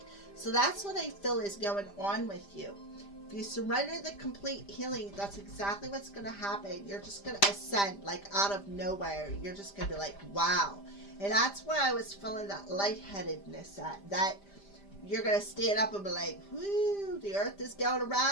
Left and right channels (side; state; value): right; late; 5.0 ms